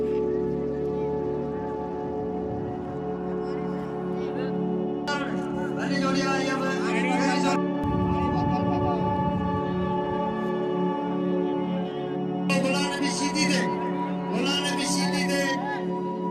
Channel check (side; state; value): both; identical; correlation 1.00